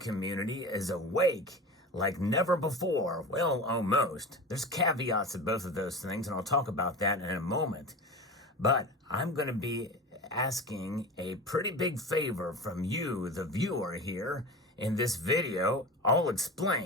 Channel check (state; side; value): normal; both; correlation 0.30